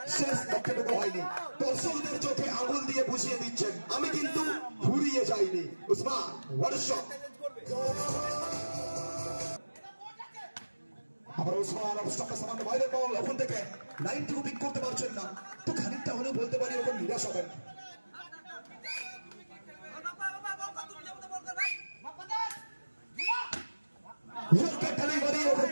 শেষ লক্ষ্যটুকু দর্শকদের চোখে আঙুল দিয়ে বুঝিয়ে দিচ্ছেন আমি কিন্তু ঘুরিয়ে যাইনি। Usman what a shot. আবার উসমান অবস্ট্রাকটা সামান্য বাইরের বল, ওখান থেকে লাইনটুকু পিক করতে পারছেন না, তো খানিকটা হলেও বলতে পারি ওখানে নিরাশ হবেন। ওখান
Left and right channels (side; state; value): both; inverted; correlation -1.00